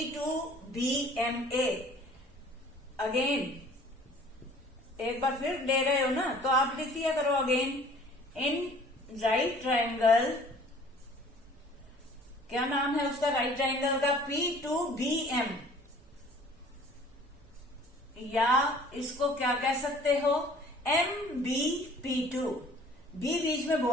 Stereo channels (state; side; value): normal; both; correlation 0.51